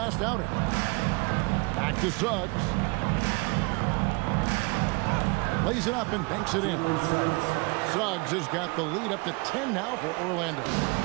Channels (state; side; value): quieter; left; 28.8 dB